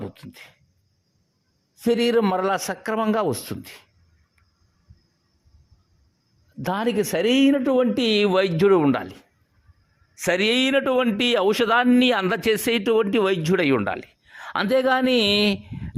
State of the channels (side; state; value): both; identical; correlation 1.00